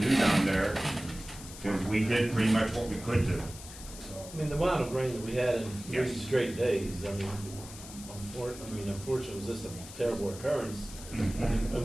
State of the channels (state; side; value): noise; left; hiss, 14 dB below the sound